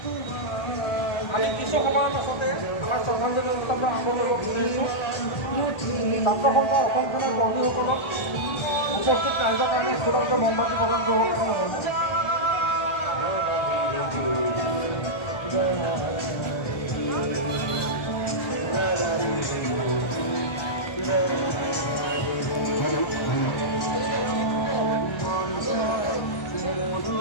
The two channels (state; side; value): late; right; 1.3 ms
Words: আমি কিছু সময়ৰ পাছতে আমাৰ শ্ৰদ্ধাঞ্জলি অনুষ্ঠানটো আৰম্ভ কৰিব বিচাৰিছোঁ। ছাত্ৰ সন্থা অসম সেনাৰ কৰ্মীসকলক উপস্থিত ৰাইজৰ কাৰণে একোটাকে মমবাতি প্ৰদান কৰিবৰ কাৰণে অনুৰোধ জনাইছোঁ।